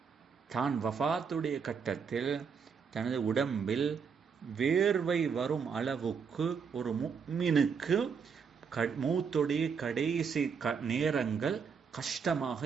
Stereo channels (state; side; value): quieter; left; 6.2 dB